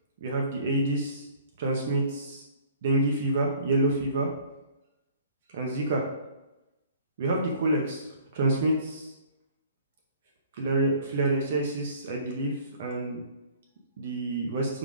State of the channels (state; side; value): inverted; both; correlation -0.52